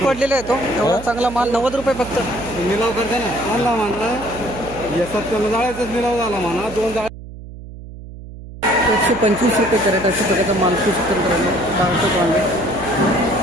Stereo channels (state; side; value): noise; right; hum, 14 dB below the sound